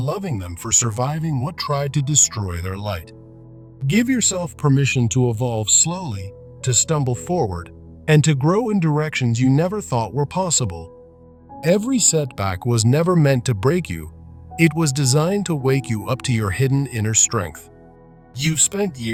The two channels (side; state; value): both; identical; correlation 1.00